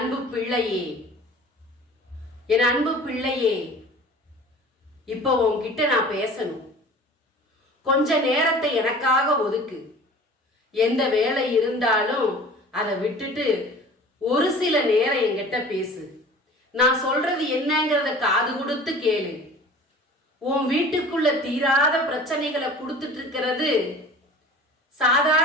பிள்ளையே, என் அன்பு பிள்ளையே, இப்போ உன்கிட்ட நான் பேசணும். கொஞ்ச நேரத்தை எனக்காக ஒதுக்கு. எந்த வேலை இருந்தாலும் அதை விட்டுட்டு ஒரு சில நேரம் என்கிட்ட பேசு. நான் சொல்றது என்னங்கிறத காது கொடுத்து கேளு. உன் வீட்டுக்குள்ள தீராத பிரச்சனைகளை கொடுத்துட்டு இருக்கிறது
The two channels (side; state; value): both; normal; correlation 0.43